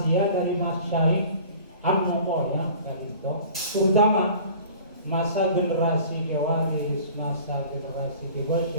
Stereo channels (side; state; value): both; inverted; correlation -0.45